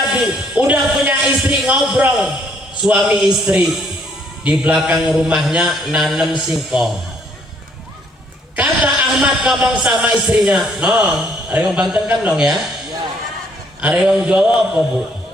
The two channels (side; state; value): both; normal; correlation 0.66